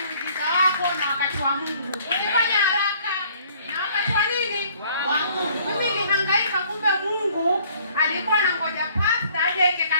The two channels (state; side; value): inverted; both; correlation -0.58